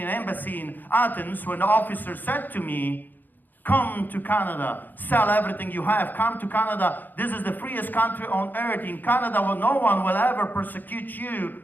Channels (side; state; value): right; late; 0.088 ms